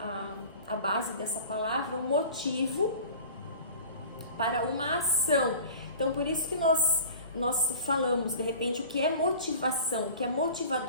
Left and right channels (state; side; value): inverted; both; correlation -0.41